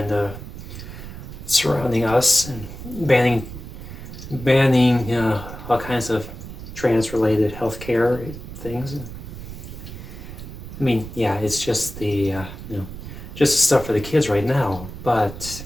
surrounding us and banning all kinds of trans-related healthcare things. I mean, yeah, it's just the just the stuff for the kids right now. But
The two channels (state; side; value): noise; right; rumble, 11 dB below the sound